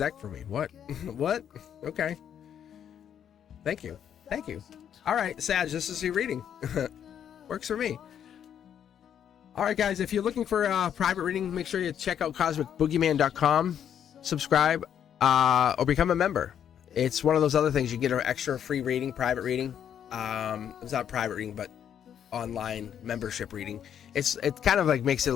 for me. What? What? Okay. Thank you. All right, Sag, this is your reading. Works for me. All right, guys, if you're looking for a private reading, make sure you check out cosmicboogeyman.com, subscribe, or become a member. It's one of those other things. You get an extra free reading, private reading. It's not private reading, but online membership reading. It kind of like makes it a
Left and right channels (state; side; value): quieter; right; 9.1 dB